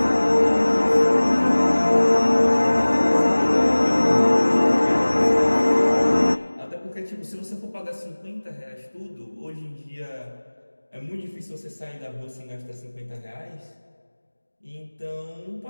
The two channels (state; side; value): inverted; both; correlation -1.00